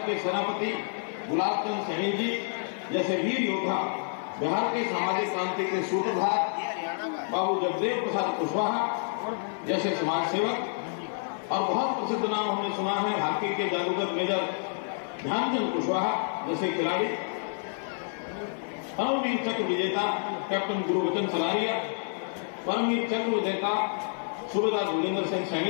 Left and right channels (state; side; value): silent; right; 55 dB below the other